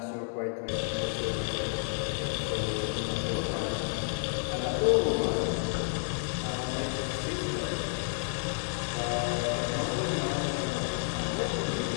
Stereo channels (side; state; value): right; silent; 57 dB below the other